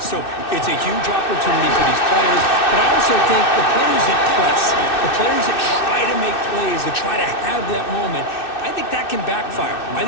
it's a huge opportunity for these players, but I also think the players that press, the players that try to make plays, that try to have that moment, I think that can backfire. I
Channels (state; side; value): late; right; 2.6 ms